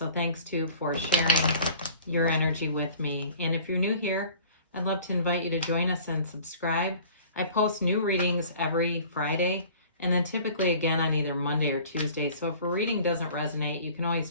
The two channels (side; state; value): both; inverted; correlation -0.46